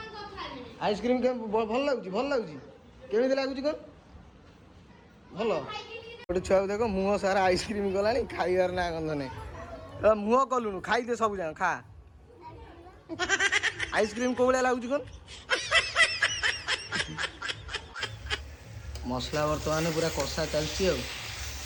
ଆଇସ୍କ୍ରିମ୍ ଭଲ ଲାଗୁଛି କେମିତି ଲାଗୁଛି କ'ଣ ଭଲ ଗୋଟେ ଛୁଆକୁ ଦେଖ ମୁହଁ ସାରା ଆଇସ୍କ୍ରିମ୍ ଗଲାଣି ଖାଇବାର ନା ଗନ୍ଧ ନାହିଁ ମୁହଁ କଲୁଣୁ ଖାଇଦେ ସବୁ ଯାକ ଖା ଆଇସ୍କ୍ରିମ୍ କୋଉ ଭଳିଆ ଲାଗୁଛି କ'ଣ ମସଲା ବର୍ତ୍ତମାନ ପୁରା କଷା ଚାଲିଛି ଆଉ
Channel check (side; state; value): both; identical; correlation 1.00